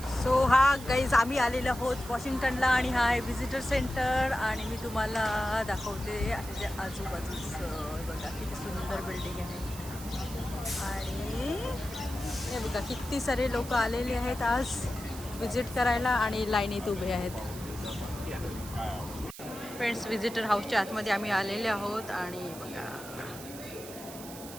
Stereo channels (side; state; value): right; noise; hiss, 14 dB below the sound